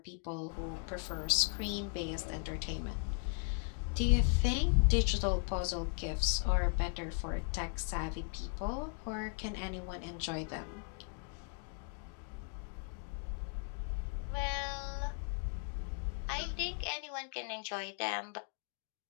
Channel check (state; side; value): quieter; right; 37.1 dB